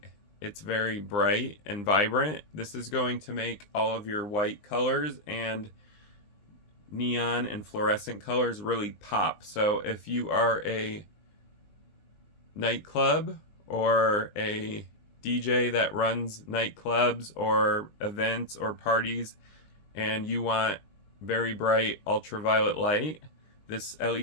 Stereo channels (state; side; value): late; right; 20 ms